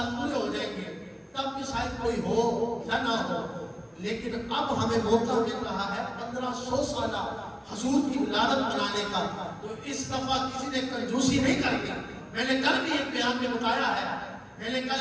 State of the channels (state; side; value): identical; both; correlation 1.00